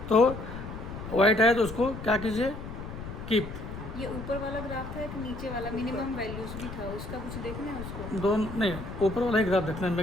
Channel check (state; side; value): noise; left; rumble, 9 dB below the sound